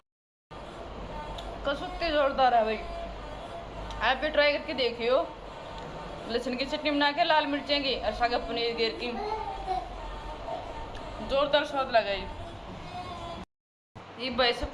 कसुत्ती जोरदार है भाई। आप भी ट्राई करके देखियो। लहसुन की चटनी बना के लाल मिर्चें की और सागा पनीर गिर की जोरदार स्वाद लगा। ये भाई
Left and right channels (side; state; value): both; identical; correlation 1.00